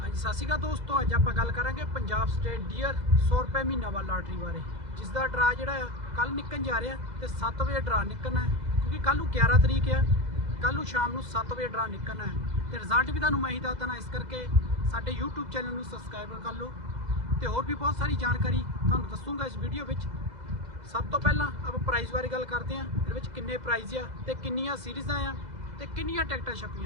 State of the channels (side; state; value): left; late; 2.0 ms